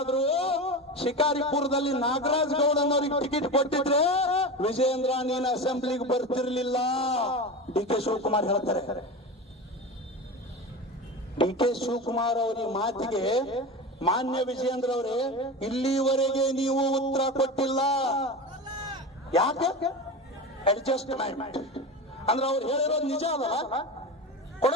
ಶಿಕಾರಿಪುರದಲ್ಲಿ ನಾಗರಾಜ್ ಗೌಡನವರಿಗೆ ಟಿಕೆಟ್ ಕೊಟ್ಟಿದ್ರೆ ವಿಜಯೇಂದ್ರ ನೀನು ಅಸೆಂಬ್ಲಿಗೆ ಬರ್ತಿರ್ಲಿಲ್ಲ. DK ಶಿವಕುಮಾರ್ ಹೇಳ್ತಾರೆ. DK ಶಿವಕುಮಾರ್ ಅವರ ಮಾತಿಗೆ ಮಾನ್ಯ ವಿಜಯೇಂದ್ರ ಅವರೇ, ಇಲ್ಲಿವರೆಗೆ ನೀವು ಉತ್ತರ ಕೊಟ್ಟಿಲ್ಲ. ಯಾಕೆ? ಅಡ್ಜಸ್ಟ್ಮೆಂಟ್ ಅಂದ್ರೆ ಅವ್ರು ಹೇಳಿರೋದು ನಿಜ ಅದಲ್ಲ,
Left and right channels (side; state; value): both; normal; correlation 0.25